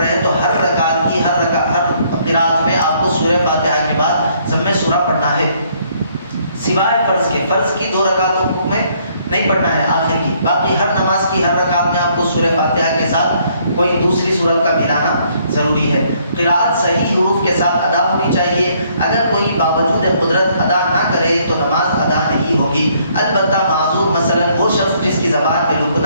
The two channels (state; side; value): inverted; both; correlation -0.66